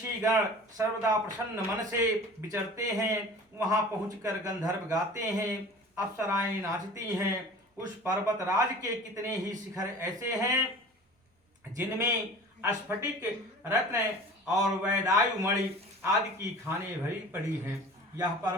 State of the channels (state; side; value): normal; both; correlation 0.41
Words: सर्वदा प्रसन्न मन से विचरते हैं। वहां पहुंचकर गंधर्व गाते हैं, अप्सराएं नाचती हैं। उस पर्वत राज के कितने ही शिखर ऐसे हैं जिनमें स्फटिक, रत्न और वैदायु मणि आदि की खाने भरी पड़ी हैं। यह